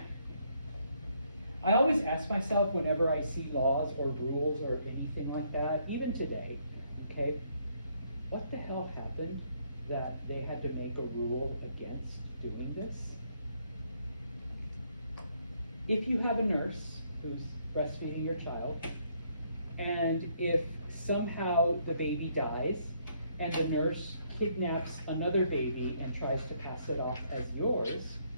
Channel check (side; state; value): both; inverted; correlation -0.70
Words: I always ask myself whenever I see laws or rules or anything like that, even today, okay, what the hell happened that they had to make a rule against doing this? If you have a nurse who's breastfeeding your child, and if somehow the baby dies, and the nurse kidnaps another baby and tries to pass it off as yours,